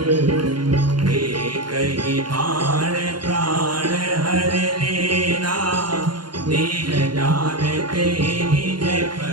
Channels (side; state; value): left; late; 0.71 ms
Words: कही बाण प्राण हर लेना, दीन जानते निज